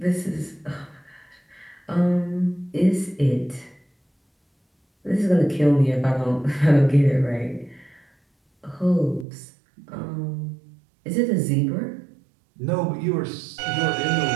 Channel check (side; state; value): left; drops out; at 9.2 s